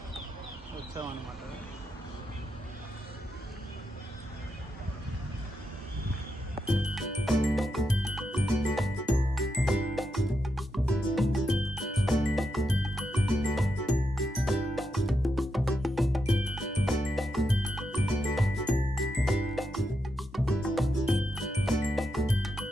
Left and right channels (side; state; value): both; normal; correlation 0.84